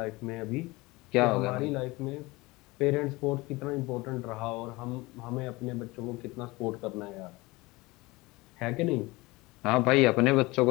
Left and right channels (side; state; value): right; quieter; 22.3 dB